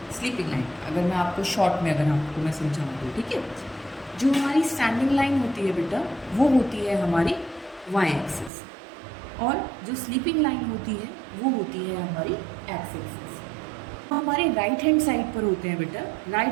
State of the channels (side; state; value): left; drops out; at 8.5 s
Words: स्लीपिंग लाइन। अगर मैं आपको शॉर्ट में आपको मैं समझाऊँ तो ठीक है, जो हमारी स्टैंडिंग लाइन होती है बेटा वो होती है हमारी वाई एक्सिस, और जो स्लीपिंग लाइन होती है वो होती है हमारी एक्स एक्सिस। हमारे राइट हैंड साइड पर होते हैं बेटा,